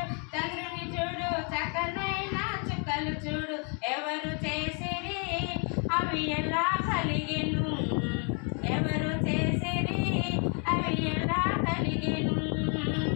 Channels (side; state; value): right; quieter; 38.1 dB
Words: చంద్రుని చూడు, చక్కనైన చుక్కలు చూడు. ఎవరు చేసిరి అవి ఎలా కలిగెను, ఎవరు చేసిరి అవి ఎలా కలిగెను.